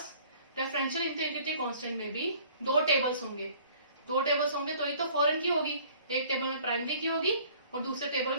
रेफरेंशियल इंटीग्रिटी कांस्टेंट में भी 2 टेबल्स होंगे। 2 टेबल्स होंगे तो ये तो फॉरेन की होगी, एक टेबल में प्राइमरी की होगी और दूसरे टेबल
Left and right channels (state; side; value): inverted; both; correlation -0.53